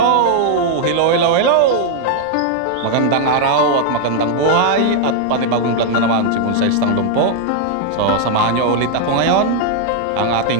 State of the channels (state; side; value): different; both; correlation 0.00